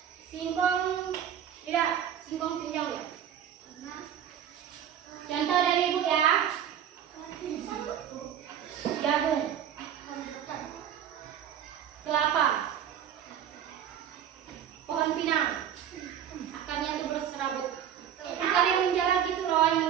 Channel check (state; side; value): quieter; left; 9.6 dB